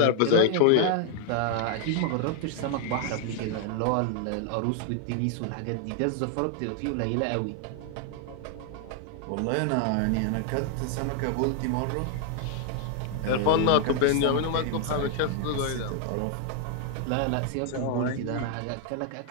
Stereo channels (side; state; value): both; different; correlation 0.00